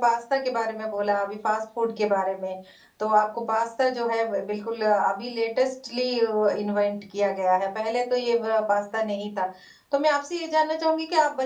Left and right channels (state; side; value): identical; both; correlation 1.00